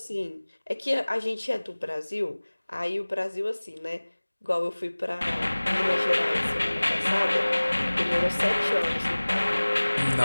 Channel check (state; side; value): inverted; both; correlation -1.00